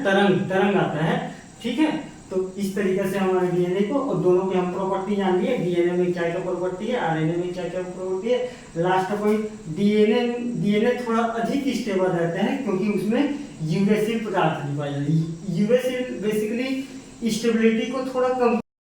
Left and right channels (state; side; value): identical; both; correlation 1.00